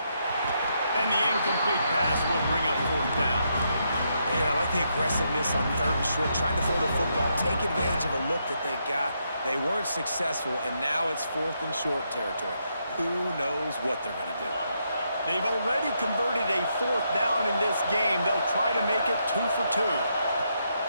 And the incomplete pass will bring up fourth down. And I like the aggressiveness on third and short, trying to throw the football, take advantage of a look that they got. They weren't successful, and now it's fourth and short territory. Who knows what they're going to do? They've already converted a fourth down in this game. They'll try to make it 2 for 2.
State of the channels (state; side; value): inverted; both; correlation -0.79